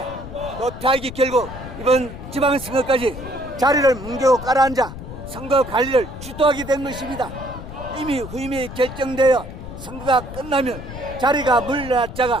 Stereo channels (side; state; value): left; noise; rumble, 11 dB below the sound